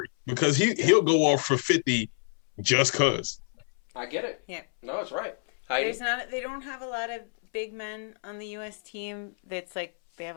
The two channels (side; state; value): right; silent; 59 dB below the other